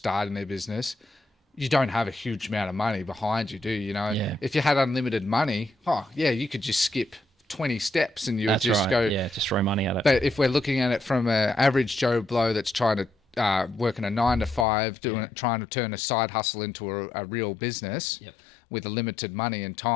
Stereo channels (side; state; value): right; drops out; at 14.7 s